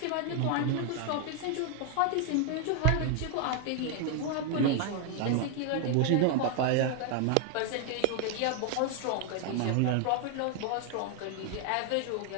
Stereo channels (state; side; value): different; both; correlation 0.01